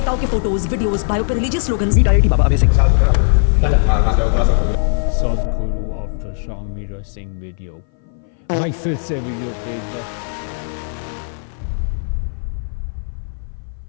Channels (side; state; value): right; silent; 59 dB below the other